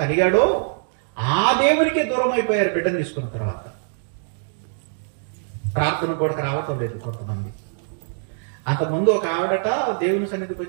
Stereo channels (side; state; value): left; silent; digital silence